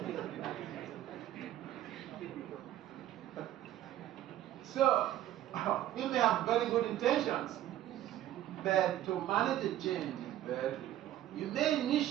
So, you may have very good intentions, but to manage the change is very difficult. You may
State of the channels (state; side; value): quieter; left; 13.0 dB